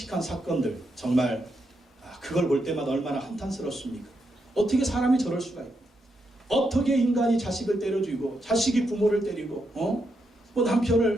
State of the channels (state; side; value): normal; both; correlation 0.82